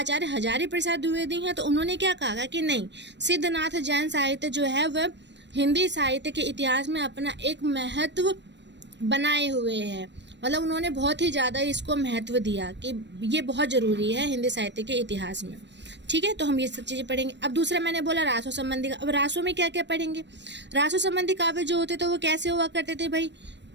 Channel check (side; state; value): left; late; 0.51 ms